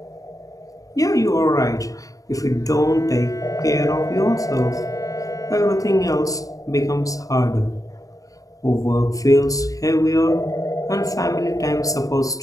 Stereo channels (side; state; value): right; late; 0.17 ms